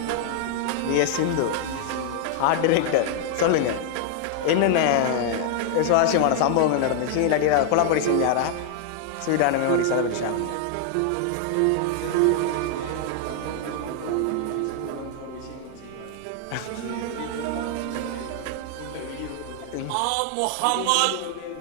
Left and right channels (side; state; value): both; different; correlation 0.00